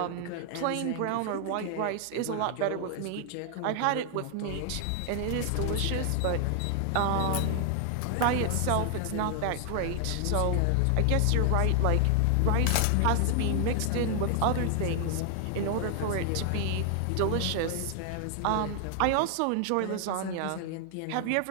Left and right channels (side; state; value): both; different; correlation 0.00